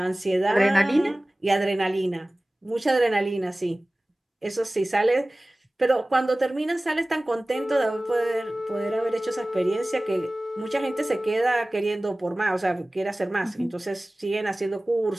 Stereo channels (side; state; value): both; normal; correlation 0.98